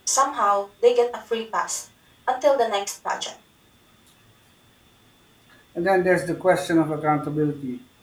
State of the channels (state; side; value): identical; both; correlation 1.00